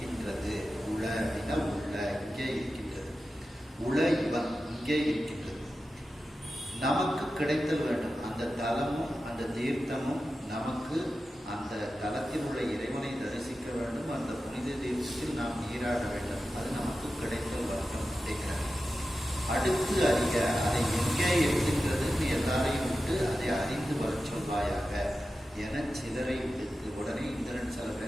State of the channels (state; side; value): normal; both; correlation 0.92